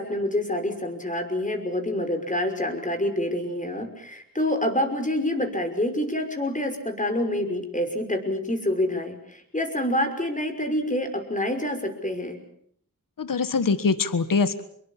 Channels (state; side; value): normal; both; correlation 0.27